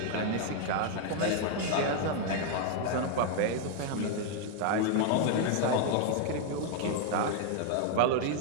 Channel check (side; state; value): both; different; correlation 0.00